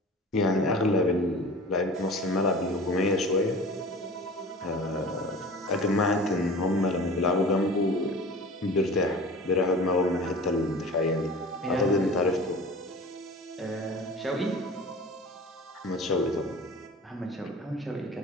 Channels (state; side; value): normal; both; correlation 0.39